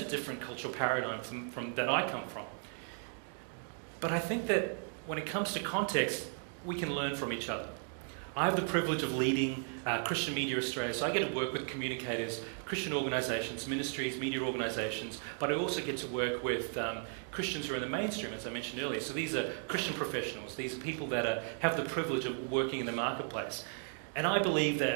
different cultural paradigm from that I come from. But I think that when it comes to context, we can learn from each other. I have the privilege of leading Christian Media Australia, so I get to work with communicators, Christian organisations, ministries, media organisations, but I also get to work with Christians who are in the mainstream, as I mentioned earlier. So these are Christian professionals. These are people that have the privilege of working in the marketplace. And I believe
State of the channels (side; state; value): left; silent; 54 dB below the other